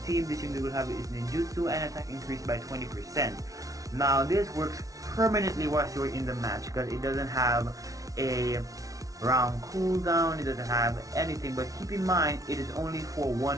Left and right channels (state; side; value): late; left; 0.17 ms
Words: team, this unit will have its ninjutsu and attack increased by 20%. Now this works permanently whilst you're in the match because it doesn't have a round cooldown, it doesn't have anything, but keep in mind it is only for one